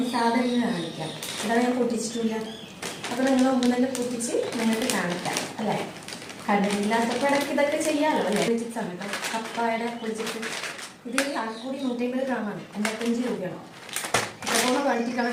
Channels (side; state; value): both; identical; correlation 1.00